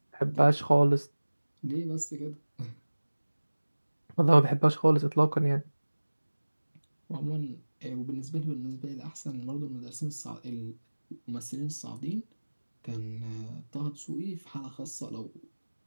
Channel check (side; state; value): both; inverted; correlation -1.00